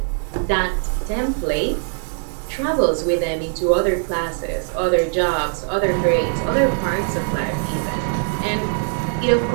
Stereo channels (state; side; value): silent; left; 65 dB below the other